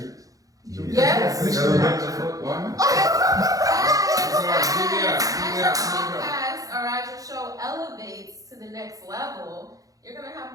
Yes. Why not? Podcast or as your show elevates to the next level, you're gonna have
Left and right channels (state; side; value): late; left; 0.17 ms